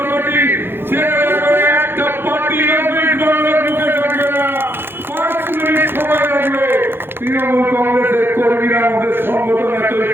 পার্টি ছেড়ে করে একটা পার্টি বাংলার মুখে থাকবে না 5 মিনিট সময় লাগবে তৃণমূল কংগ্রেসের কর্মীরা আমাদের সংগঠন এতই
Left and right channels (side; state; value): left; late; 0.10 ms